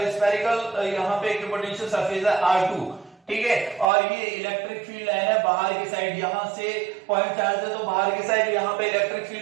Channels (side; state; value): left; drops out; at 3.9 s